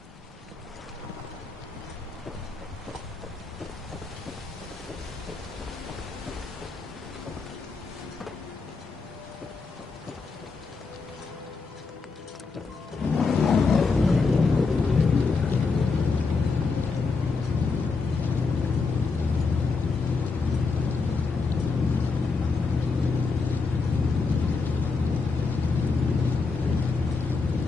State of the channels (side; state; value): right; quieter; 4.4 dB